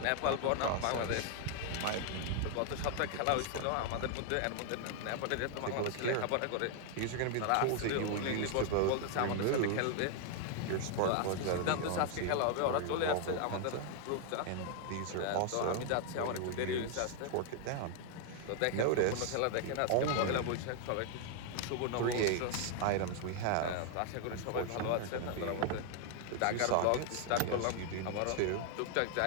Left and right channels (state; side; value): different; both; correlation 0.00